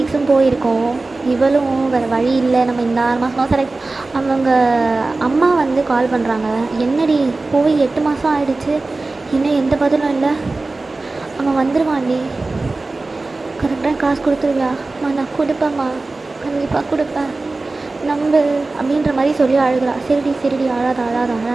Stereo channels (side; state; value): left; quieter; 3.4 dB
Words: போயிருக்கோம். இவளும் வேறு வழி இல்லை, நம்ம இந்த 6 மாதம் செலக்ட். அவங்க அம்மா வந்து கால் பண்ணுறாங்க. என்னடி போய் 8 மாதம் ஆகிடுச்சு, இன்னும் எந்த பதிலும் இல்லை. அவன் வந்துடுவான்டி, கரெக்டாக காசு கொடுத்துருவியாம்மா? நான் கொடுப்பேம்மா, கண்டிப்பாக கொடுப்பேன், நம்பு அப்படின்ற மாதிரி சொல்லி அழுகிறா. சரிடி அழாத